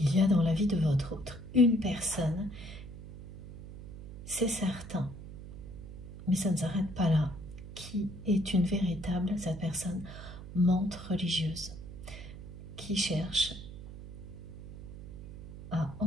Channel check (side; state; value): right; noise; hum, 13 dB below the sound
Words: y a dans la vie de votre autre une personne, c'est certain, mais ça ne s'arrête pas là, qui est une véritable, cette personne, menthe religieuse, qui cherche à